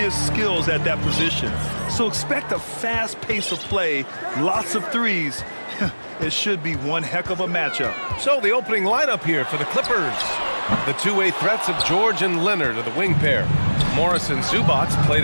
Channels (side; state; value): both; inverted; correlation -1.00